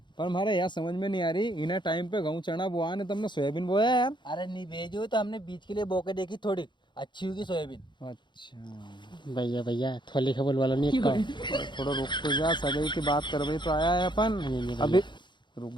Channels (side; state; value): right; late; 0.22 ms